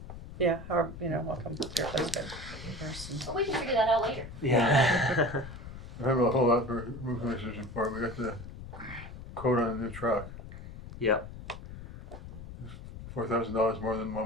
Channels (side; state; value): left; noise; rumble, 12 dB below the sound